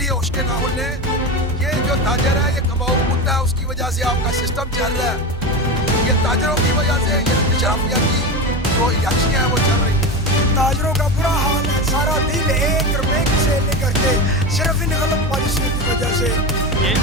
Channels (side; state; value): both; normal; correlation 0.21